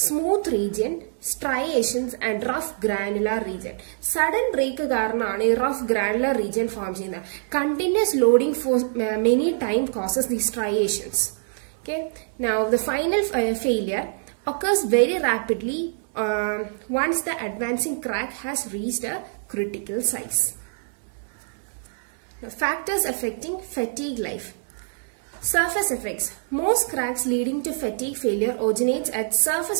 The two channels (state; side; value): silent; left; digital silence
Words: Smooth region, striations and rough granular region. Sudden break കാരണമാണ് ഈ rough granular region form ചെയ്യുന്നത്. Continuous loading for many time causes these striations. Okay. Now the final failure occurs very rapidly once the advancing crack has reached a critical size. Now, factors affecting fatigue life. Surface effects. Most cracks leading to fatigue failure originates at surface